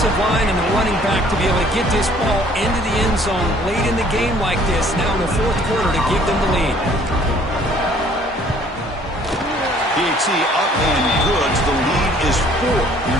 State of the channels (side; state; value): both; normal; correlation 0.57